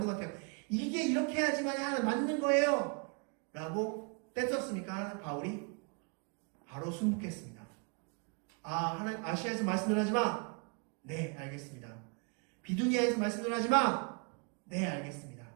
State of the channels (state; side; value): quieter; left; 36.0 dB